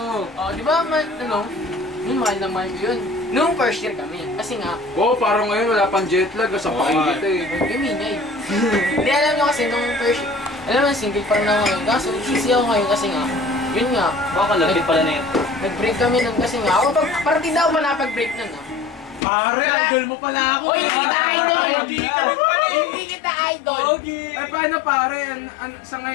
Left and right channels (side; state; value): right; drops out; at 19.2 s